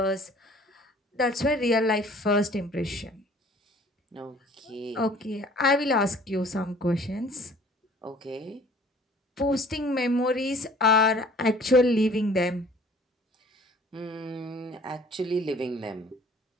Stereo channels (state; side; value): normal; both; correlation 0.52